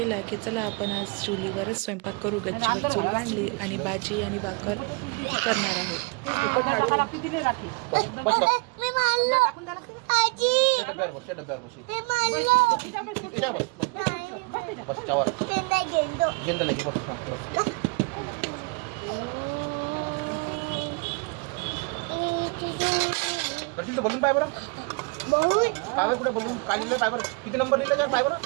की चला आपण आज चुलीवरच स्वयंपाक करू. गच्चीवर चूल बांधली आणि भाजी आणि भाकर करणार आहोत. दर्शन तो बलून पाय बरं पायवर कुठे बलून काय लिहिलं पायवर किती नंबर लिहिलं त्या पायवर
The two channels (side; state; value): left; quieter; 30.9 dB